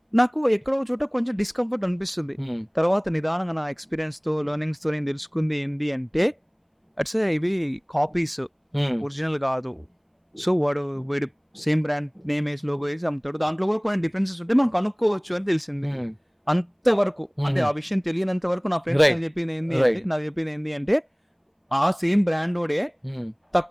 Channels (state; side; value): identical; both; correlation 1.00